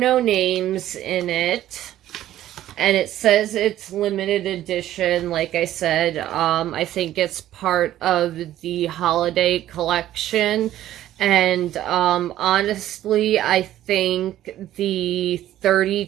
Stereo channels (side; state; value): left; quieter; 13.1 dB